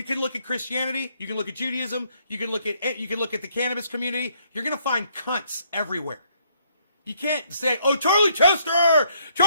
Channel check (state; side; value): inverted; both; correlation -0.69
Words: can look at Christianity, you can look at Judaism, you can look at the cannabis community. You're gonna find cunts everywhere. You can't say, "Oh, Charlie